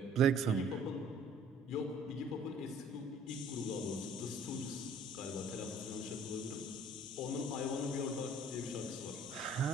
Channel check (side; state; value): both; normal; correlation 0.55